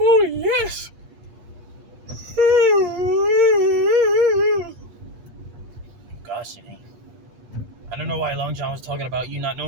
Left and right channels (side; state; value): left; late; 8.4 ms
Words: yes. Gosh, Janae. I don't know why Long John was talking about you not